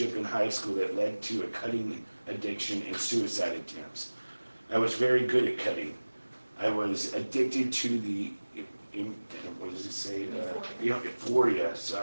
in high school that led to a cutting addiction and suicide attempts. I was very good at cutting. I was addicted to the, what does it say? Euphoria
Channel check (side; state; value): both; inverted; correlation -1.00